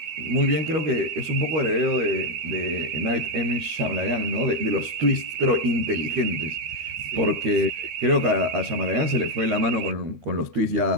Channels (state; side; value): late; left; 13 ms